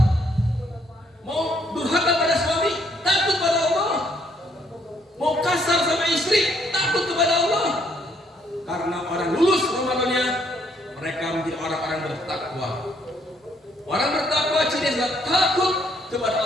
Mau durhaka pada suami, takut kepada Allah. Mau kasar sama istri, takut kepada Allah. Karena orang lulus Ramadannya, mereka menjadi orang-orang bertakwa. Orang bertakwa cirinya takut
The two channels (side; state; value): both; normal; correlation 0.69